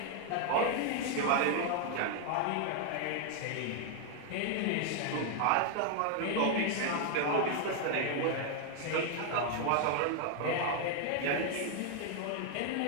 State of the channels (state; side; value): different; both; correlation 0.00